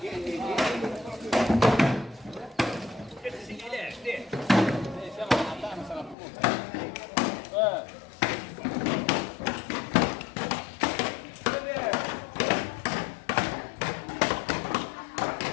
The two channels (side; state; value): right; drops out; at 6.2 s